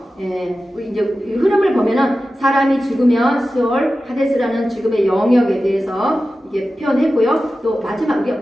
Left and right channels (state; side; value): normal; both; correlation 0.94